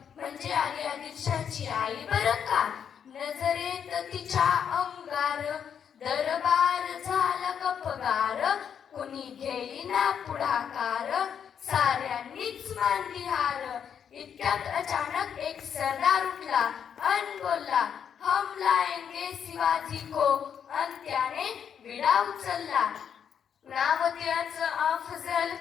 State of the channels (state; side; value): quieter; right; 7.9 dB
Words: म्हणजे आली आदिलशाची आई बरं का. नजरेत तिच्या अंगार दरबार झाला गपगार. कुणी घेईना पुढाकार साऱ्यांनीच मानली हार. इतक्यात अचानक एक सरदार उठला अन बोलला हम लाएंगे शिवाजी को. अन त्याने विडा उचलला. नाव त्याचं अफजल